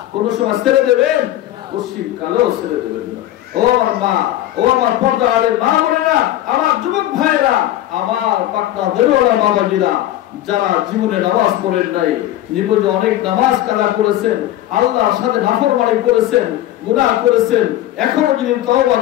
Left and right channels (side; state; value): right; quieter; 13.8 dB